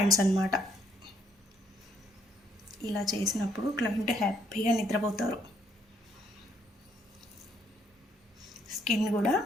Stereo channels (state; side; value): normal; both; correlation 0.69